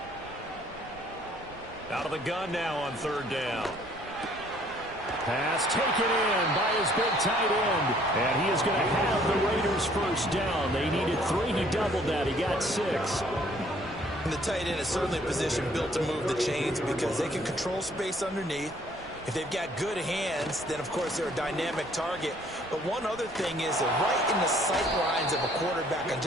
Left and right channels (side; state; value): right; noise; rumble, 20 dB below the sound